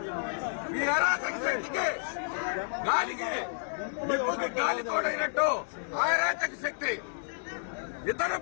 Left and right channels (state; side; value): silent; right; digital silence